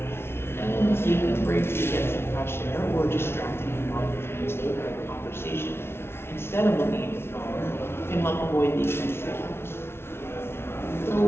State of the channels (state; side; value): late; right; 0.12 ms